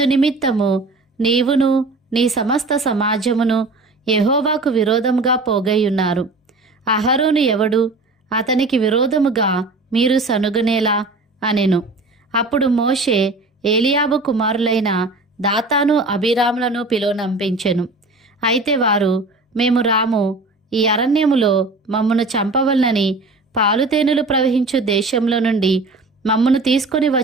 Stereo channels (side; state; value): left; quieter; 3.3 dB